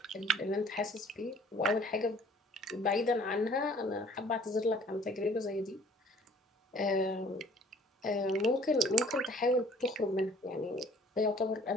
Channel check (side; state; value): both; normal; correlation 0.55